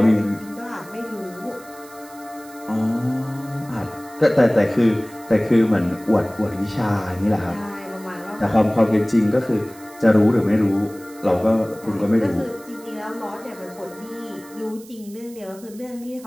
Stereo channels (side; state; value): right; noise; hiss, 22 dB below the sound